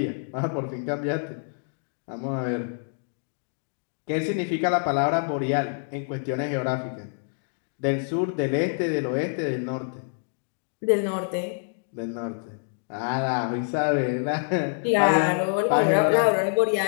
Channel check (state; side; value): silent; right; 61 dB below the other